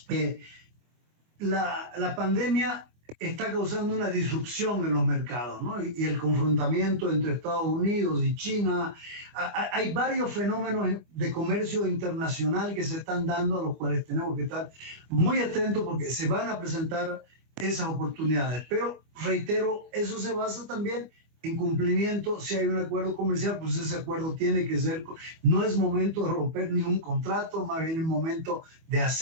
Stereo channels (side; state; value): left; late; 24 ms